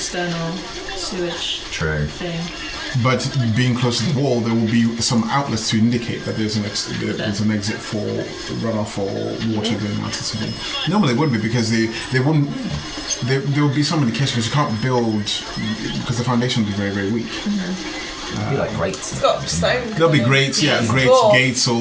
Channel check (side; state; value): both; identical; correlation 1.00